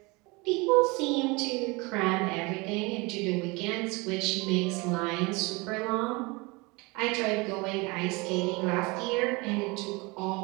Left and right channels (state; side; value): quieter; left; 26.0 dB